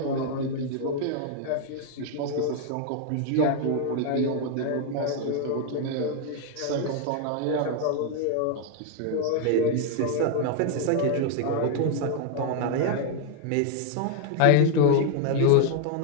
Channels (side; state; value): both; different; correlation 0.00